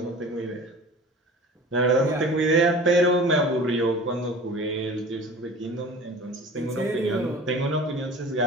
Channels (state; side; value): normal; both; correlation 0.40